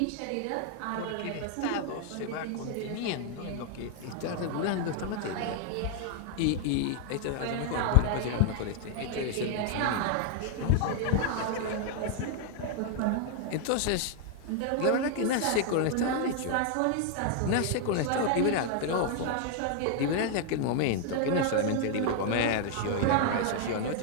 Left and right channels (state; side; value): different; both; correlation 0.00